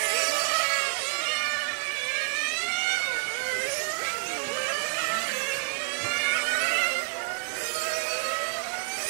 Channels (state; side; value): silent; left; digital silence